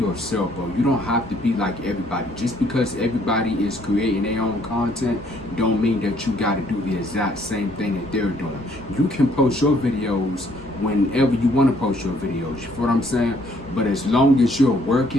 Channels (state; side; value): normal; both; correlation 0.65